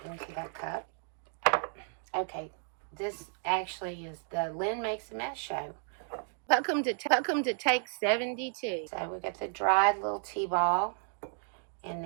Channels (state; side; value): silent; left; 56 dB below the other